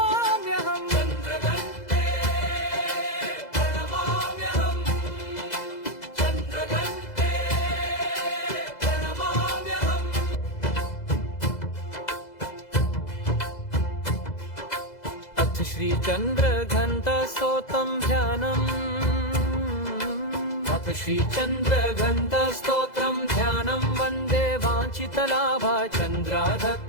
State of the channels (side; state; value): right; late; 2.0 ms